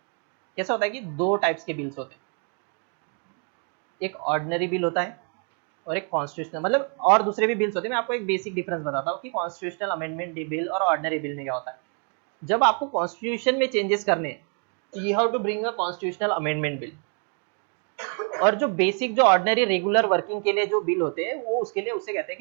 कैसा होता है कि दो टाइप्स के बिल्स होते हैं, एक ऑर्डिनरी बिल होता है और एक कॉन्स्टिट्यूशनल, मतलब और दूसरे भी बिल्स होते हैं। मैं आपको एक बेसिक डिफरेंस बताता हूँ कि कॉन्स्टिट्यूशनल अमेंडमेंट बिल और ऑर्डिनरी बिल में क्या होता है। जब आपको कॉन्स्टिट्यूशन में चेंजेस करने हैं, you have to bring a constitutional amendment bill, और जो बेसिक जो ऑर्डिनरी रेगुलर वर्किंग के लिए जो बिल होते हैं, वो उसके लिए उसे कहते हैं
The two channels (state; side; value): quieter; left; 39.1 dB